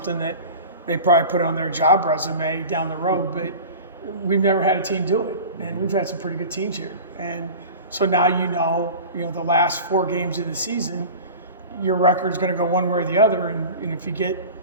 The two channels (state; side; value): inverted; both; correlation -0.36